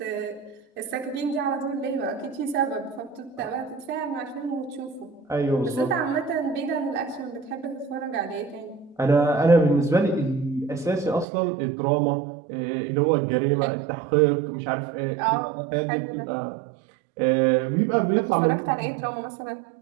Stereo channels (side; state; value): left; drops out; at 11.2 s